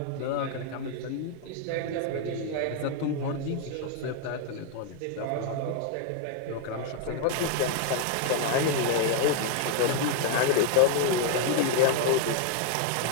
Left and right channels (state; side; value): different; both; correlation 0.00